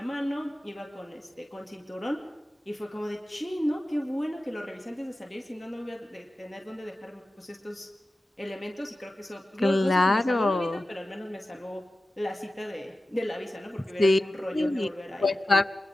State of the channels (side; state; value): both; normal; correlation 0.95